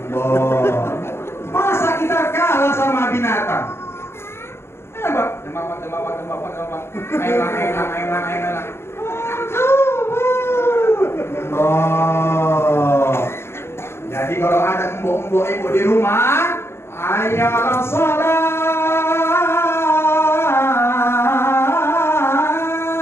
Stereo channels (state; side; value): late; right; 0.12 ms